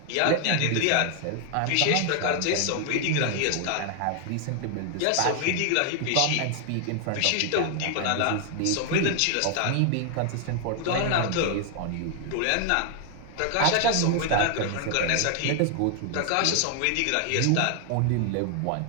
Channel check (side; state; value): both; different; correlation 0.00